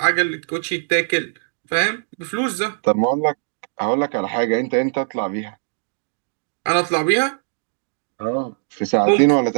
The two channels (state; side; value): silent; left; digital silence